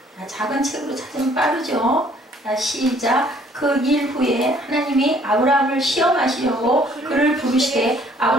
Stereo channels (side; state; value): both; normal; correlation 0.60